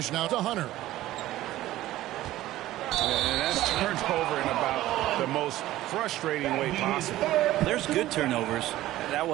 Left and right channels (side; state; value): left; quieter; 15.3 dB